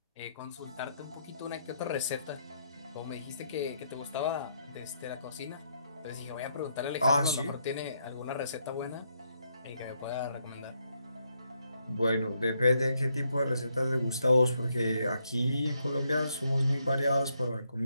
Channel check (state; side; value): inverted; both; correlation -0.76